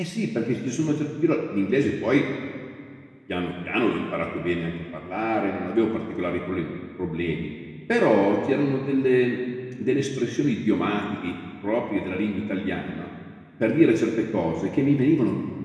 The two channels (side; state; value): both; identical; correlation 1.00